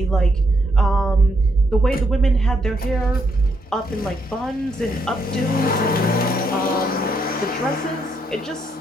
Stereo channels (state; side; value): normal; both; correlation 0.76